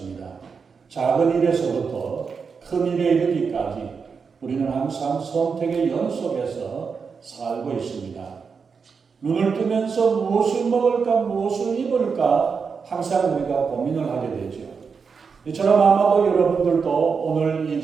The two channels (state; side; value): quieter; left; 5.6 dB